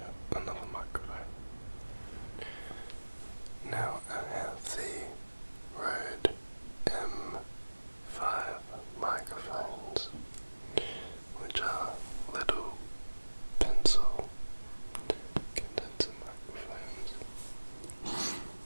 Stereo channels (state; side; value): inverted; both; correlation -1.00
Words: another microphone. Now I have the Rode M5 microphones, which are little pencil condenser microphones